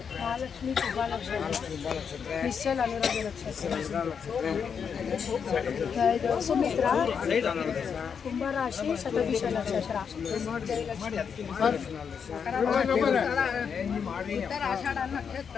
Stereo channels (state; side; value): quieter; right; 6.7 dB